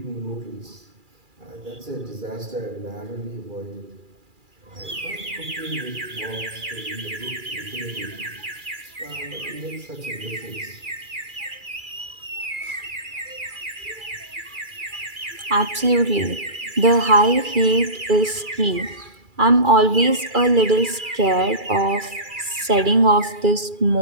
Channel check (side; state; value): left; late; 2.4 ms